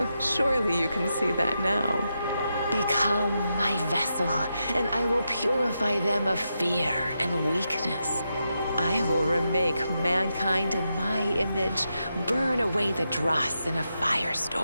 Surely you can see that now. Become my vessel, and I will purify them of fear and weakness. I will remake mankind in my image, burn away the dross in a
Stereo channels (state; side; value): inverted; both; correlation -0.86